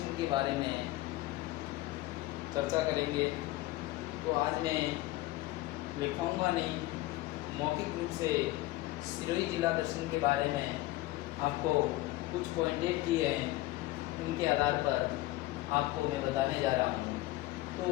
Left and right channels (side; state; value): right; quieter; 17.9 dB